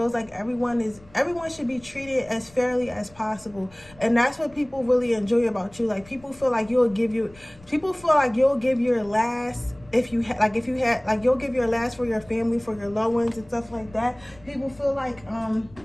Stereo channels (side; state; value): left; noise; rumble, 24 dB below the sound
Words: like everyone should be treated as fairly as possible, and that's what people really enjoy about you. Like people feel like you'll give your last. If you'll give your last for your family, for your loved ones and stuff like that. People feel like